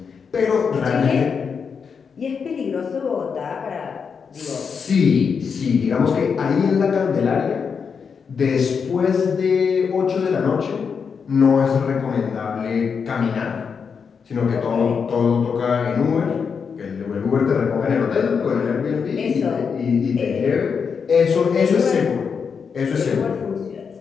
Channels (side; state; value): right; quieter; 6.1 dB